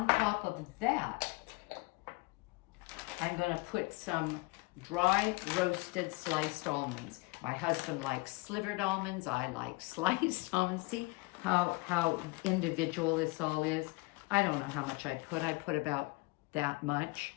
top of that, I'm going to put some dry roasted sliced almonds. My husband likes slivered almonds. I like sliced almonds. See how individual this all is? I don't know how much I put. I put about that much.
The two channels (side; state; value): right; quieter; 25.8 dB